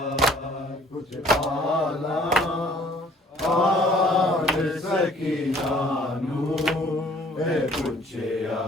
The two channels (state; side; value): normal; both; correlation 0.57